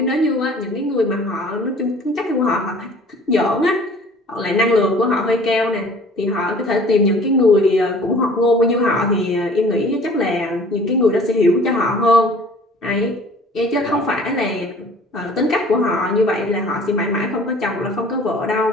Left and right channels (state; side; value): normal; both; correlation 0.49